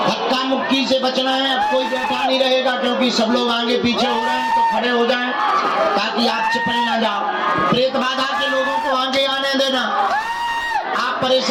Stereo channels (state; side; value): identical; both; correlation 1.00